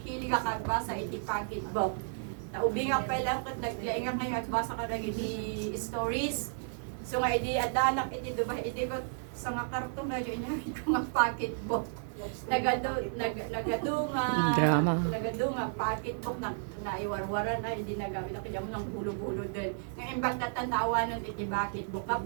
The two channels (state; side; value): silent; left; digital silence